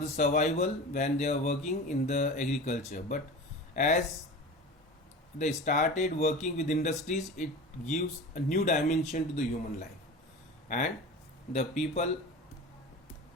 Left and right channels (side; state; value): both; normal; correlation 0.33